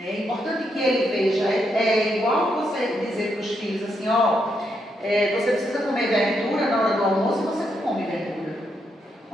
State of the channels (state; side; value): normal; both; correlation 0.80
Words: importante que ele veja. É igual você dizer para os filhos assim, você precisa comer verdura na hora do almoço e você não come verdura.